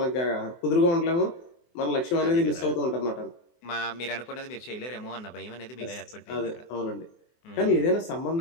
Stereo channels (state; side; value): late; right; 24 ms